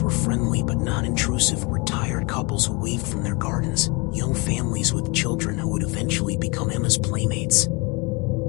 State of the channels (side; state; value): right; quieter; 28.0 dB